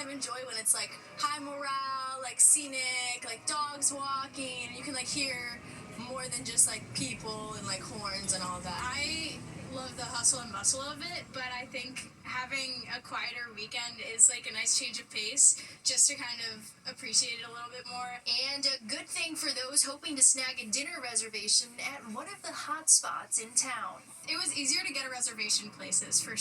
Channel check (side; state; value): both; identical; correlation 1.00